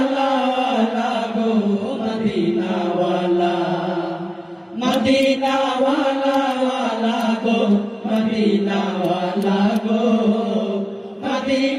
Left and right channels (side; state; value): both; identical; correlation 1.00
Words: ওয়ালা গো, মদিনা ওয়ালা, মদিনা ওয়ালা ওয়ালা গো, মদিনা ওয়ালা গো,